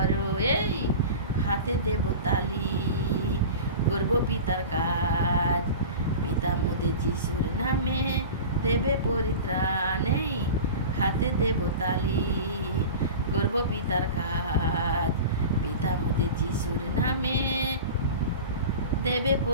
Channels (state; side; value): inverted; both; correlation -0.33